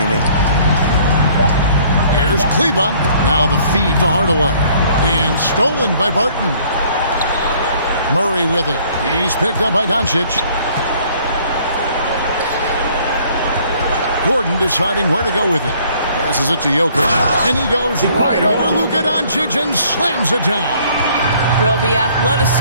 in. Here's Kleba. Now the feed to Hardaway. And stolen by Barton. Murray with it. He's picked up by Doncic. Gordon deciding where to go with it. Passes it to Jokic. And he goes right over Luka Doncic and slams it down. Well, the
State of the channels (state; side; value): inverted; both; correlation -0.58